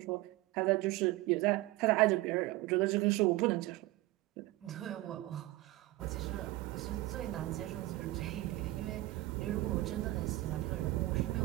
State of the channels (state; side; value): quieter; left; 18.6 dB